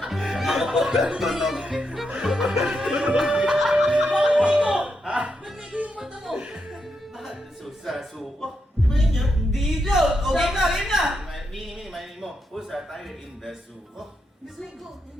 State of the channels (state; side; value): normal; both; correlation 0.83